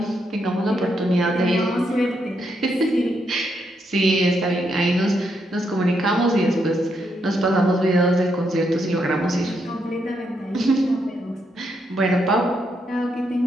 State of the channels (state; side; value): normal; both; correlation 0.79